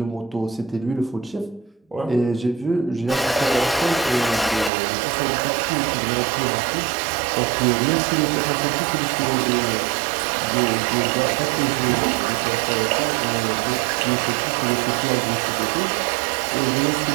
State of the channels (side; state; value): left; drops out; at 4.7 s